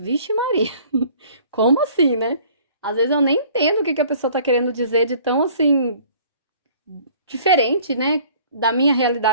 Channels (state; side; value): inverted; both; correlation -0.53